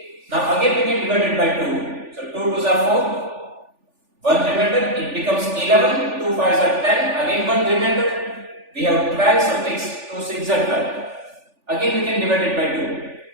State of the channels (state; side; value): late; left; 3.4 ms